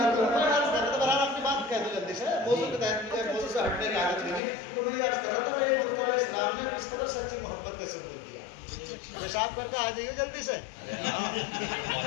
اپنی بات کہہ دو جلدی سے موضوع کے تحت موضوع سے ہٹنے کی عادت نہیں تو میں یہ عرض کر رہا تھا یہ مصطفیٰ اسلام نے کس قدر سچی محبت کا ثبوت دیا پیشاب کر کے آ جائیے جلدی سے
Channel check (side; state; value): right; drops out; at 4.4 s